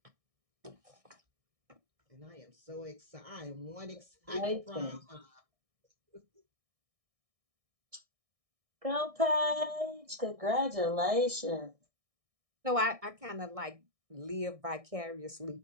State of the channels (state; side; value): late; left; 1.6 ms